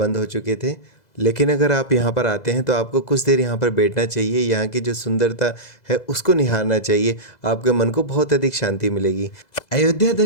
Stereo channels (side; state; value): right; late; 2.0 ms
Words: हो चुके थे। लेकिन अगर आप यहाँ पर आते हैं तो आपको कुछ देर यहाँ पर बैठना चाहिए, यहाँ की जो सुंदरता है उसको निहारना चाहिए, आपके मन को बहुत अधिक शांति मिलेगी। अयोध्या